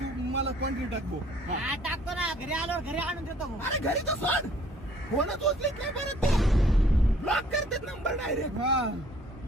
तू मला कॉन्ट्री टाकबो. हा, टाकतो ना, घरी आल्यावर घरी आणून देतो भाऊ. अरे घरी तर सोड. फोनच उचलीत नाही परत ते. ब्लॉक करतात नंबर डायरेक्ट. हा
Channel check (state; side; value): normal; both; correlation 0.57